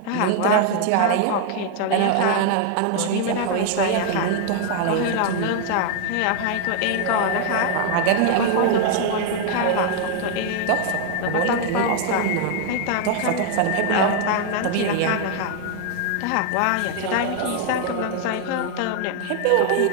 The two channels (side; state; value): both; different; correlation 0.00